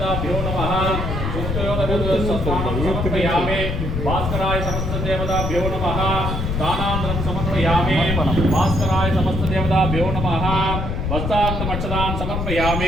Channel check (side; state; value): left; noise; rumble, 2 dB below the sound